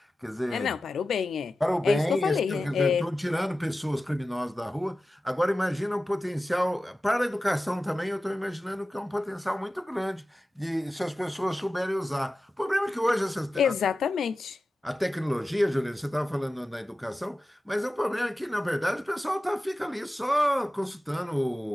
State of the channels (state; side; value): normal; both; correlation 0.94